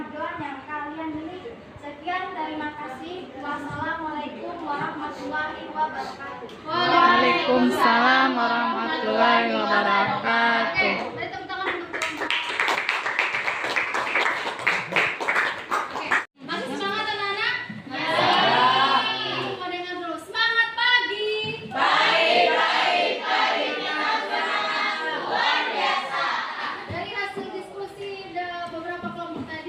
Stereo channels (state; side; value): identical; both; correlation 1.00